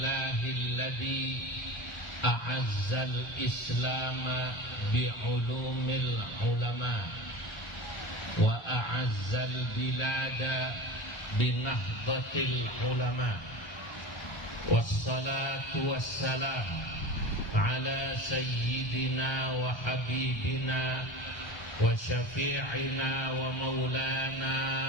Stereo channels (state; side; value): late; right; 1.3 ms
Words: a'azzal islama bi'ulumil ulama wa a'azzal bilada binahdatil ulama wassalatu wassalam ala sayyidina wa habibina wa syafi'ina wa maulana